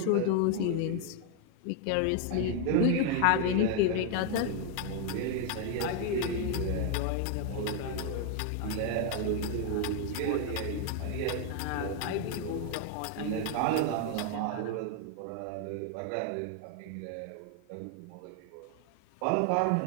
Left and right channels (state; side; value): different; both; correlation 0.01